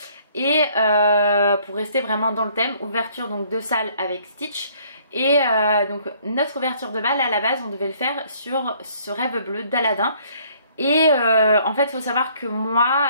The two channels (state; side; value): inverted; both; correlation -0.61